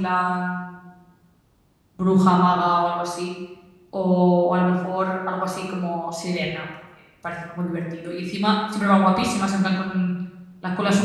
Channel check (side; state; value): both; identical; correlation 1.00